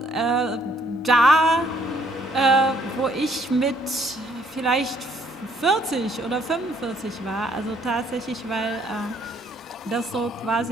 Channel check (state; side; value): normal; both; correlation 0.65